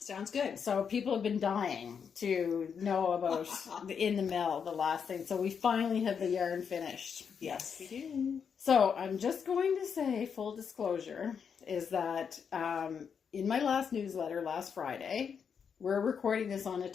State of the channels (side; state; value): right; quieter; 6.8 dB